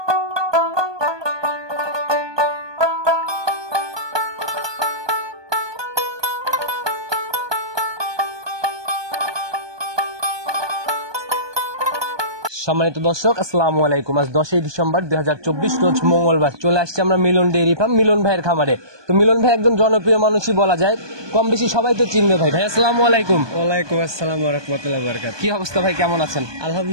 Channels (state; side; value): late; left; 1.2 ms